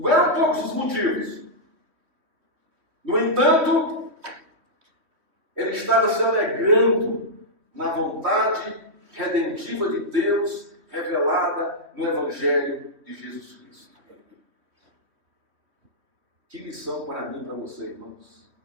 eram poucos os motivos. No entanto, ele estava se alegrando na vontade redentiva de Deus revelada no Evangelho de Jesus Cristo. Que lição para mim e para você, irmãos.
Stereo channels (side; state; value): left; late; 3.0 ms